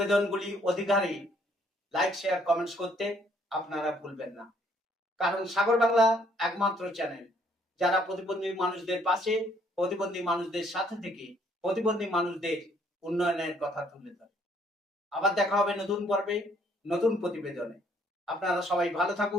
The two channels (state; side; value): normal; both; correlation 0.65